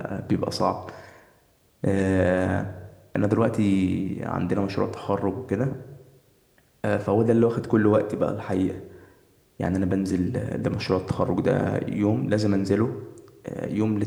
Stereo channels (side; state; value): both; identical; correlation 1.00